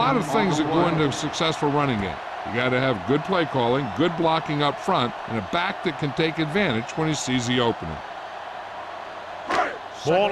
of things that go into a successful running game. You got to have good play calling, good blocking up front, and a back that can take advantage when he sees the opening.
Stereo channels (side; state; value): both; identical; correlation 1.00